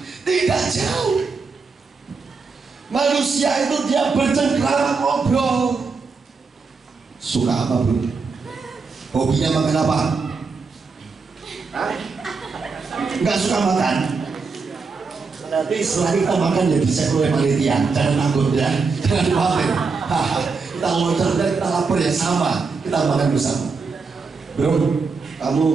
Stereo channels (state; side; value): quieter; left; 4.7 dB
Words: Tidak jauh. Manusia itu dia bercengkrama, ngobrol. Suka apa bro? Hobinya makan apa? Nggak suka makan? Nanti setelah kita makan ya dicek oleh panitia. Jangan takut ya. Jangan khawatir. Kita loncat dan kita lapar ya sama. Kita makan bersama. Bro,